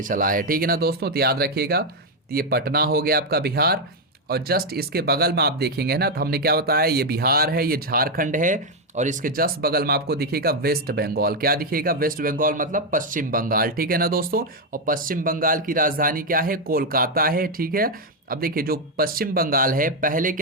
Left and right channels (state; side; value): normal; both; correlation 0.03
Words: चला है, ठीक है ना दोस्तों। तो याद रखिएगा, तो ये पटना हो गया आपका बिहार। और जस्ट इसके बगल में आप देखेंगे ना, तो हमने क्या बताया, ये बिहार है, ये झारखंड है, और इसके जस्ट बगल में आपको दिखेगा वेस्ट बंगाल। क्या दिखेगा? वेस्ट बंगाल मतलब पश्चिम बंगाल, ठीक है ना दोस्तों। और पश्चिम बंगाल की राजधानी क्या है? कोलकाता है, ठीक है। अब देखिए जो पश्चिम बंगाल है पहले